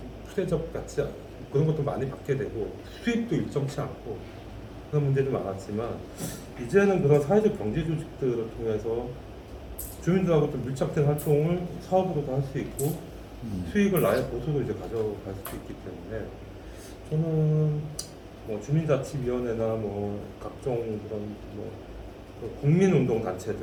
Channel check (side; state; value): both; identical; correlation 1.00